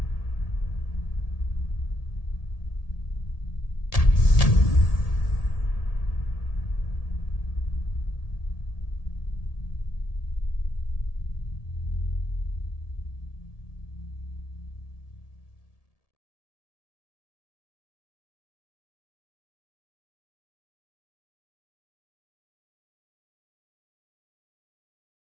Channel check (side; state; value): right; late; 1.7 ms